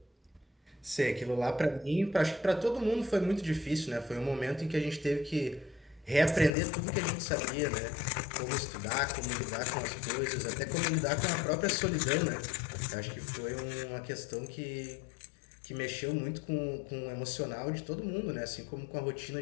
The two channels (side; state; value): right; drops out; at 6.5 s